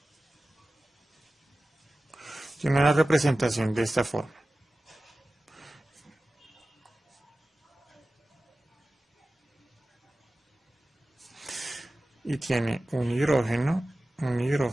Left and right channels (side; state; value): both; normal; correlation 0.95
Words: tiene una representación de esta forma. Y tiene un hidrógeno,